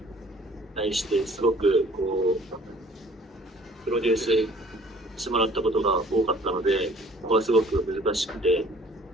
対してすごくプロデュースしてもらったことが多かったので、ここはすごく難しくて、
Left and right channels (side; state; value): both; normal; correlation 0.54